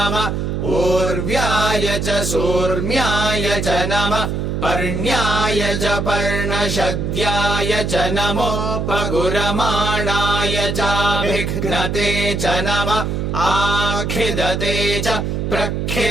ऊर्व्याय च सूर्म्याय च नमः पर्ण्याय च पर्णशद्याय च नमो पगुरमाणाय चाभिघ्नते च नमः आखिदते च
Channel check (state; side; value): noise; right; hum, 1 dB below the sound